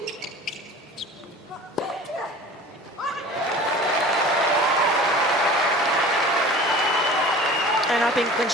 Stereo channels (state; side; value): normal; both; correlation 0.41